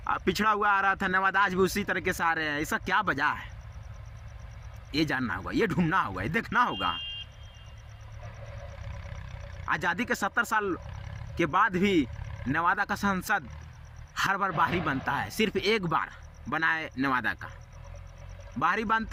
पिछड़ा हुआ आ रहा था नेवादा, आज भी उसी तरीके से आ रहे हैं। इसका क्या वजह है? ये जानना होगा, ये ढूंढना होगा, ये देखना होगा। आज़ादी के 70 साल के बाद भी नेवादा का सांसद हर बार बाहरी बनता है। सिर्फ एक बार बना है नेवादा का, बाहरी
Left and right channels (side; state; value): both; identical; correlation 1.00